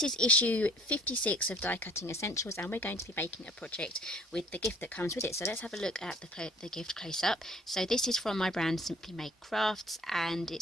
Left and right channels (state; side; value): normal; both; correlation 0.54